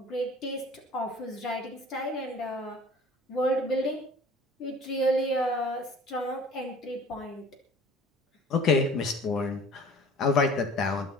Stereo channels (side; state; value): both; normal; correlation 0.47